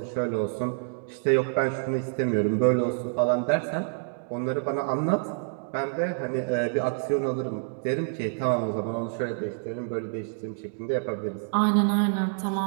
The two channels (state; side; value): silent; left; digital silence